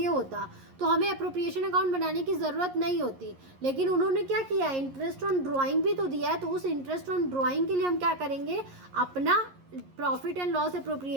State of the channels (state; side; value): late; left; 11 ms